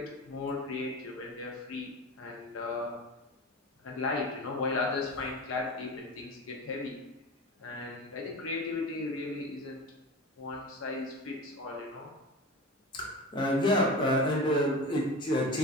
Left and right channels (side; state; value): both; normal; correlation 0.30